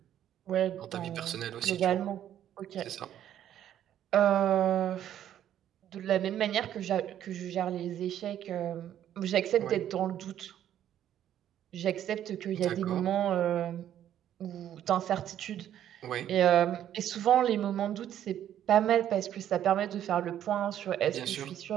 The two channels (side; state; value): left; quieter; 10.9 dB